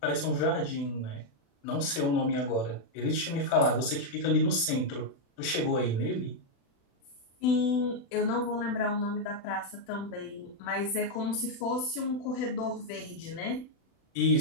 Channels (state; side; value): late; right; 36 ms